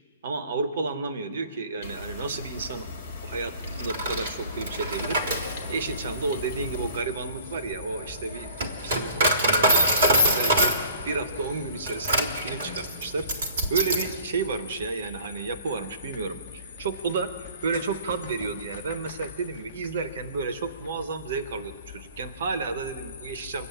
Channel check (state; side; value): inverted; both; correlation -0.51